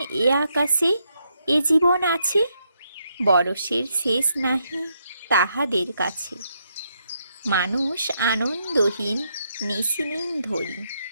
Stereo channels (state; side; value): inverted; both; correlation -0.78